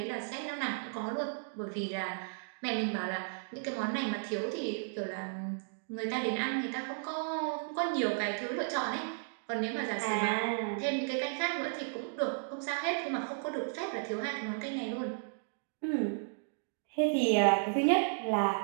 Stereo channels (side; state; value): left; silent; digital silence